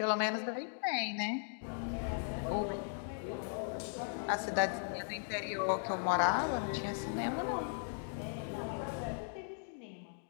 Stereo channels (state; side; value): silent; right; digital silence